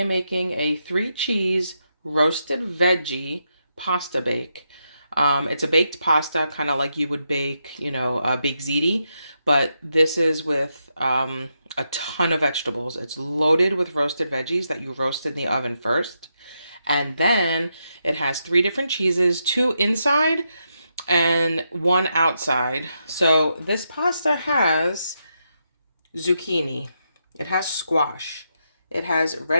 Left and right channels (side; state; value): both; inverted; correlation -0.83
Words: making a 3 cheese roasted veggie pasta bake. It's a baked pasta, kind of like you would bake, baked ziti, but this is with a ton of vegetables. It's loaded with roasted veggies that you roast in the oven first. And then it has 3 different cheeses, 2 inside and 1 outside. So this pasta has zucchini, it has squash, it has